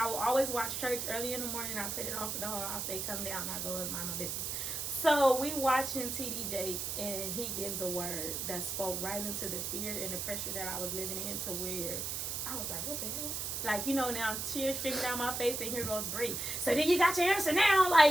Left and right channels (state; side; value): noise; right; hiss, 3 dB below the sound